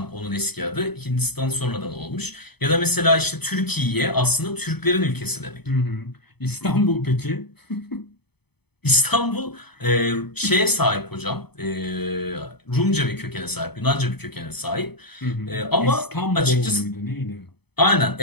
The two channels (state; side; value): late; right; 0.98 ms